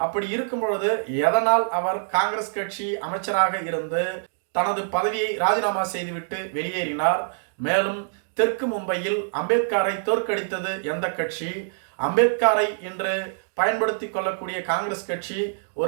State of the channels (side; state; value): left; silent; digital silence